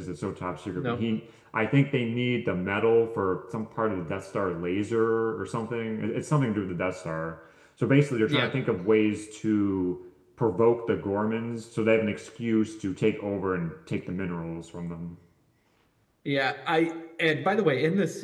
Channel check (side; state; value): both; identical; correlation 1.00